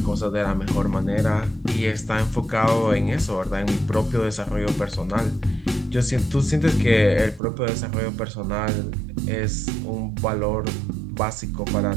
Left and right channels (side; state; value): left; drops out; at 7.4 s